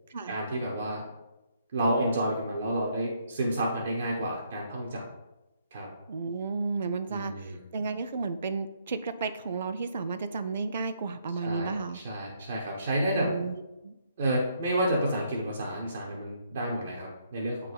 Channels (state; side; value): inverted; both; correlation -0.72